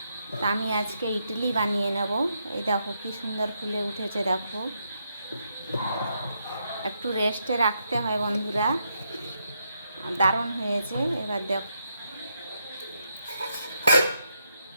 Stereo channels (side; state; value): both; inverted; correlation -0.79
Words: তা আমি আজকে ইডলি বানিয়ে নেব। এই দেখো কি সুন্দর ফুলে উঠেছে। দেখো, একটু রেস্টে রাখতে হয় বন্ধুরা। দারুণ হয়েছে। এবার দেখো